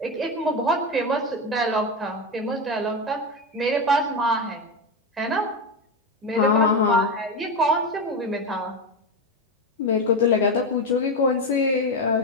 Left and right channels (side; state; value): both; normal; correlation 0.15